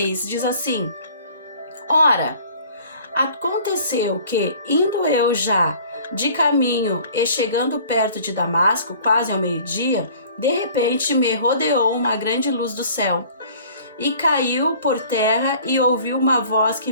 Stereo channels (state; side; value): inverted; both; correlation -0.50